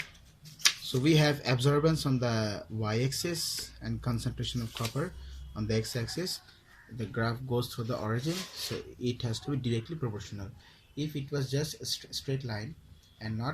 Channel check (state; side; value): identical; both; correlation 1.00